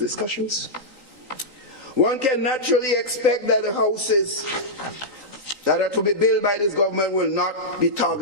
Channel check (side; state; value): left; late; 3.9 ms